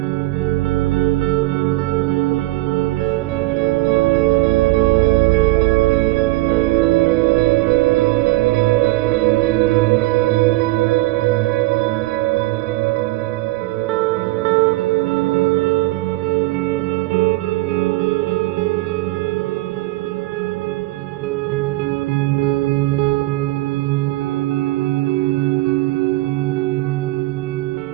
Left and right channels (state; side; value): quieter; left; 19.5 dB